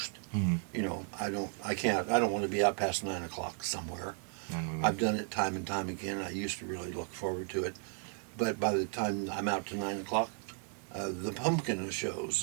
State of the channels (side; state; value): left; quieter; 37.5 dB